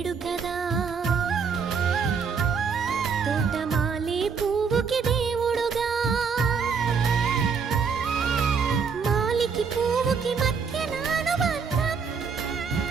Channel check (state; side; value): quieter; left; 5.8 dB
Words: కదా. తోటమాలి పువ్వుకి దేవుడుగా, మాలికి పువ్వుకి మధ్య అనుబంధం